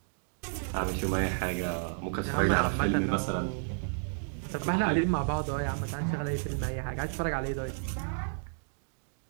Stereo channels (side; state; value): left; silent; digital silence